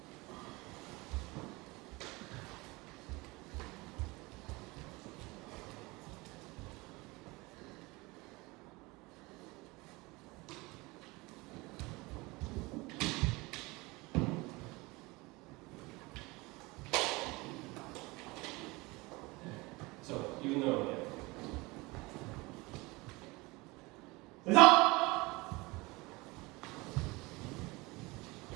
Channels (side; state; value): left; quieter; 23.5 dB